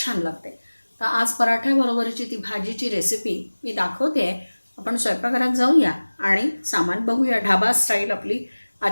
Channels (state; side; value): inverted; both; correlation -1.00